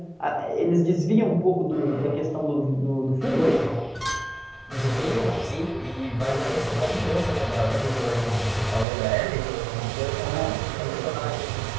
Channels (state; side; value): drops out; left; at 8.8 s